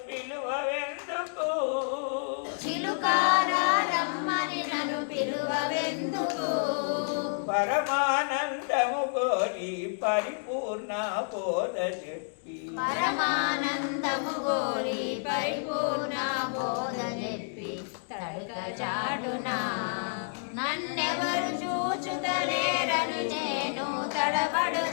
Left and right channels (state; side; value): silent; right; digital silence